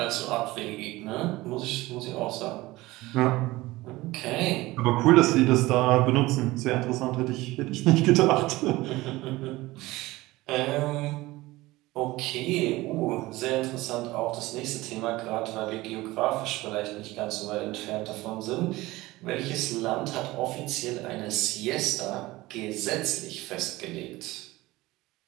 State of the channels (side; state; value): left; quieter; 19.2 dB